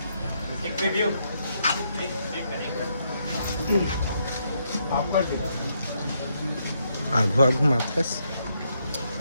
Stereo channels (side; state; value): both; inverted; correlation -0.76